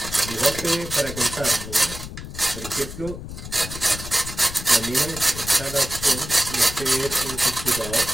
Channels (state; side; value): noise; left; rumble, 10 dB below the sound